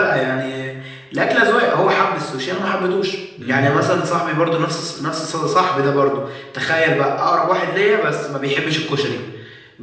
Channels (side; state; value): both; identical; correlation 1.00